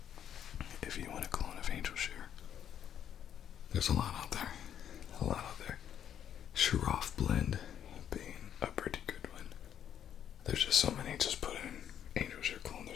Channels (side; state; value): right; quieter; 9.5 dB